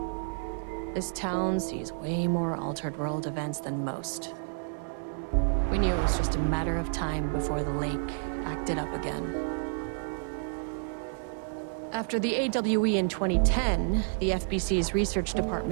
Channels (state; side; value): silent; left; digital silence